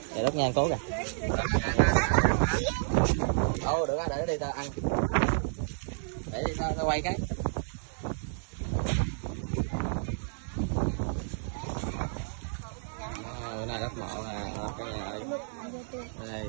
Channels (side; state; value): left; silent; digital silence